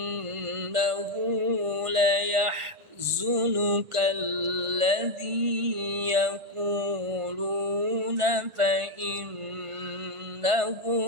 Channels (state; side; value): late; left; 1.5 ms